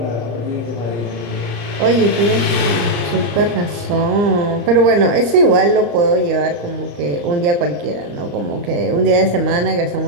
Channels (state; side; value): late; left; 34 ms